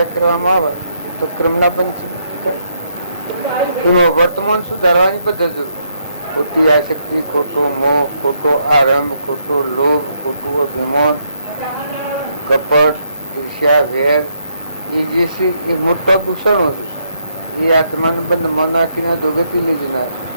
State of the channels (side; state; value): both; inverted; correlation -0.75